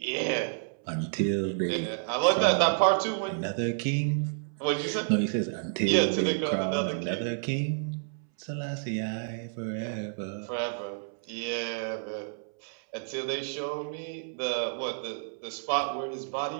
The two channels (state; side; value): silent; left; 58 dB below the other